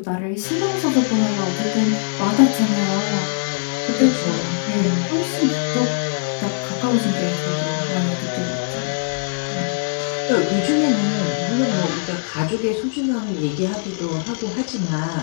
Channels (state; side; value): silent; right; digital silence